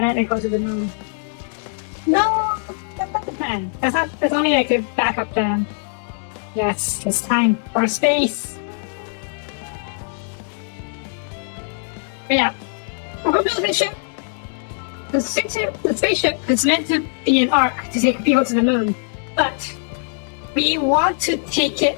and go to the moon. No, that's not the plan. That's only like a backup plan. Yes, it's time for space. But yeah, we're building a ship. The spaceship is meant to be an arc to take people to the moon, but we want to take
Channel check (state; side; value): silent; right; digital silence